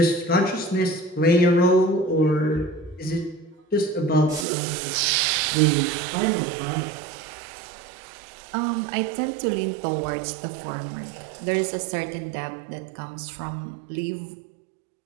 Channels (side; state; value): left; drops out; at 4.5 s